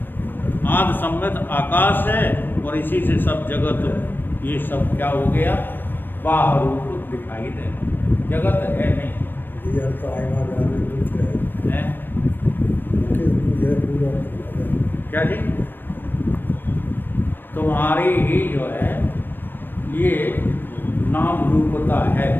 आदि सम्मित आकाश है, और इसी से सब जगत, ये सब क्या हो गया? बाहर रूप दिखाई दे। जगत है नहीं। क्या जी? तुम्हारी ही जो है ये नाम रूपता है।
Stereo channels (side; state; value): right; late; 0.094 ms